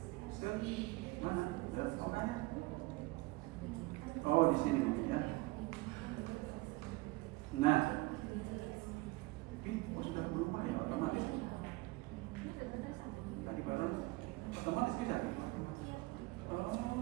Mana? Oh, ada. Oh di sini mungkin ya. Nah ini sudah berubah ya otomatis. Tadi baru otomatis bisa.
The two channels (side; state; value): left; quieter; 22.0 dB